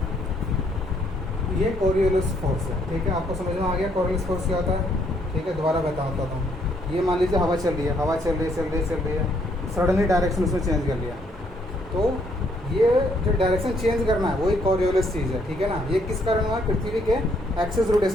ये कोरियोलिस फोर्स है, ठीक है, आपको समझ में आ गया कोरियोलिस फोर्स क्या होता है, ठीक है। दोबारा बताता हूँ, ये मान लीजिए हवा चल रही है, सडनली डायरेक्शन उसने चेंज कर लिया, तो ये जो डायरेक्शन चेंज करना है वही कोरियोलिस चीज़ है, ठीक है ना। ये किस कारण हुआ है, पृथ्वी के एक्सिस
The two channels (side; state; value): both; normal; correlation 0.69